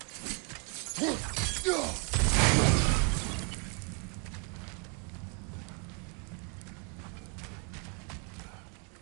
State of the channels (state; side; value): quieter; left; 34.4 dB